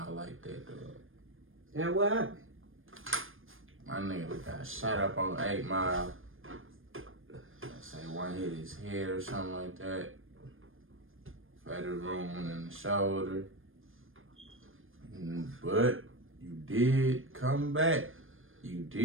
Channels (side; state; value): left; late; 0.59 ms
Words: like that, dog? And what happened? My nigga got shot up on 8 Mile. Let's say one hit his head or something like that. Fatal wound in the shoulder. But you did come back. You